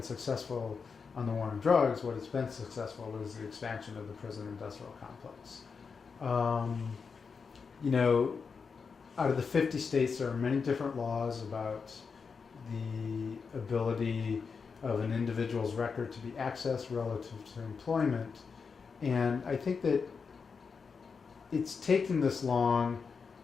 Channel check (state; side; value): quieter; right; 5.4 dB